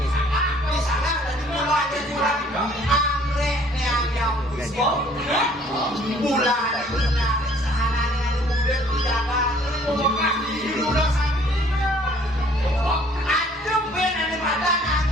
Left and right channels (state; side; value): normal; both; correlation 0.57